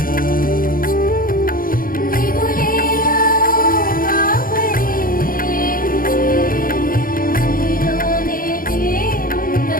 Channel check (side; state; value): right; late; 0.41 ms